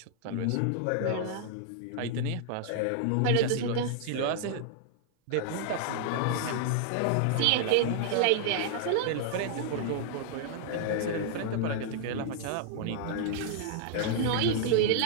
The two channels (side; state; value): both; different; correlation -0.01